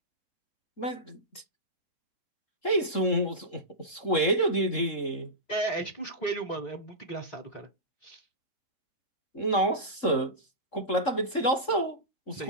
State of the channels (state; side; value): late; right; 3.7 ms